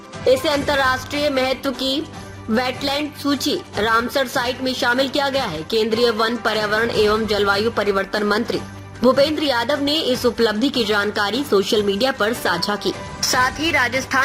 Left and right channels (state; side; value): identical; both; correlation 1.00